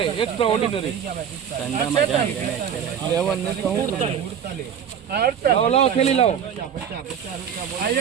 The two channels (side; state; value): left; quieter; 8.2 dB